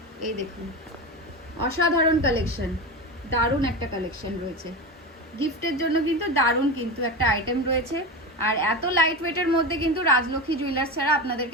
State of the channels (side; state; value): both; normal; correlation 0.22